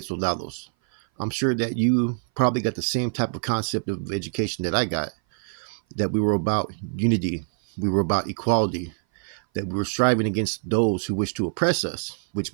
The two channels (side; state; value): left; silent; 58 dB below the other